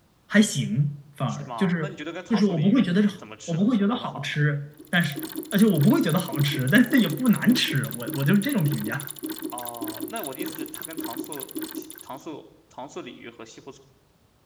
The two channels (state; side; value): identical; both; correlation 1.00